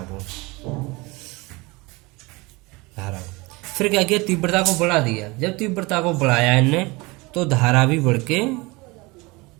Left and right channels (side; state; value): left; quieter; 24.4 dB